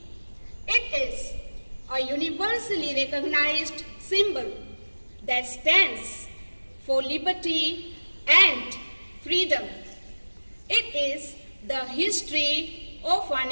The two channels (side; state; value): both; inverted; correlation -1.00